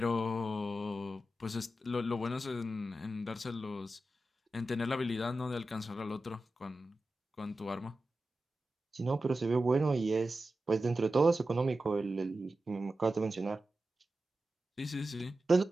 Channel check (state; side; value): normal; both; correlation 0.92